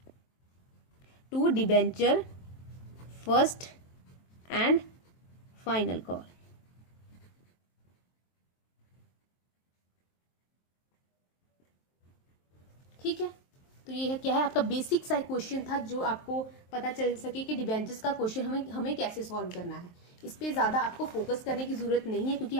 to debenture first and final call. ठीक है, तो ये है क्या है, आपका बेसिक सा क्वेश्चन था जो आपको पता चल सके कि डिबेंचर्स का क्वेश्चन हमें कैसे सॉल्व करना है। इस पे ज्यादा आपको फोकस करने की जरूरत नहीं है, क्योंकि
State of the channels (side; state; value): right; late; 23 ms